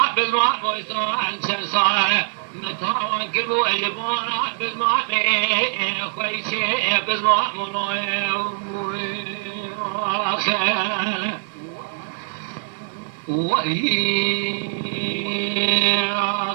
بزمان مو إسلام سنصالة متاوان كلبو الجبونا بزمان خويشي بزمان منوي خير وهي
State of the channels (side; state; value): left; silent; digital silence